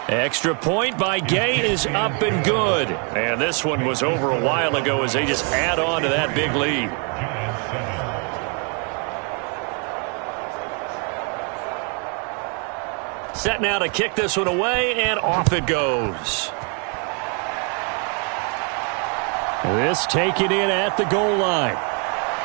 Extra point by Gay is up and good. And this one was over a while ago as they just add on to that big lead. Set now to kick this one away, and off it goes. This taken in at the goal line.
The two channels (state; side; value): quieter; left; 37.8 dB